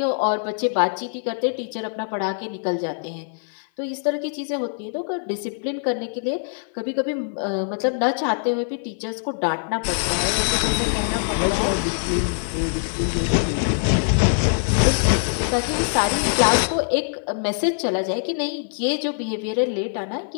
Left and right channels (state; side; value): silent; right; 55 dB below the other